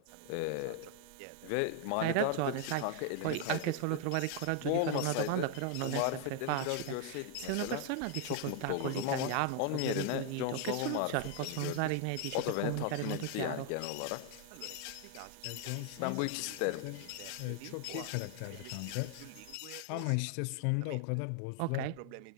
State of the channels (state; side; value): different; both; correlation 0.00